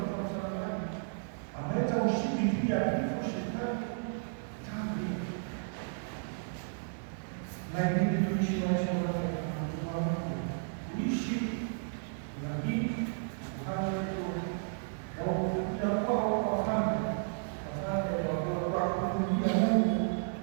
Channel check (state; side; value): silent; left; digital silence